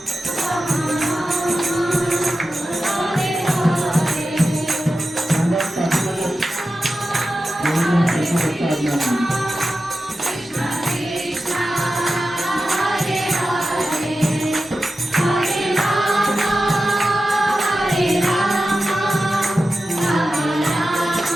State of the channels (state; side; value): normal; both; correlation 0.93